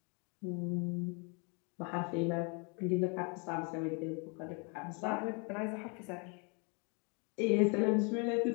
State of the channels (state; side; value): quieter; right; 34.4 dB